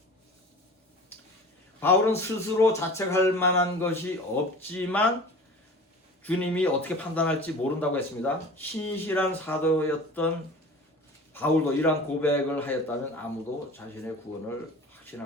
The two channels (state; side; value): normal; both; correlation 0.39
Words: 바울은 스스로 자책할 만한 것이 없지만 주님이 어떻게 판단할지 모른다고 했습니다. 신실한 사도였던 바울도 이러한 고백을 하였다면 아무도 자신의 구원을